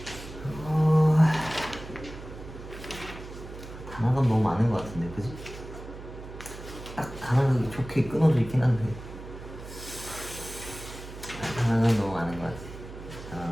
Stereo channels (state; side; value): noise; right; hum, 13 dB below the sound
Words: 단어가 너무 많은 것 같은데, 그지? 딱 단어가 좋게 끊어져 있긴 한데 단어가 너무 많은 것 같아.